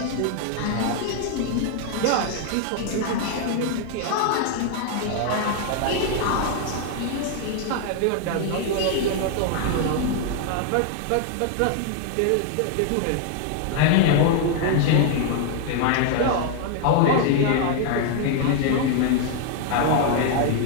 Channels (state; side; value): different; both; correlation 0.00